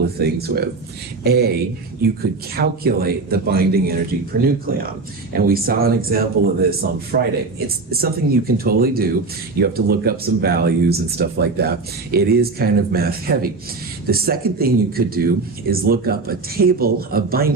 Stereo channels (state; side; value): quieter; left; 3.9 dB